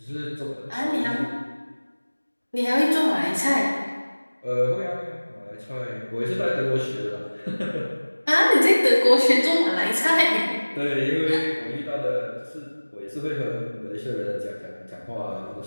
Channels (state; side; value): inverted; both; correlation -1.00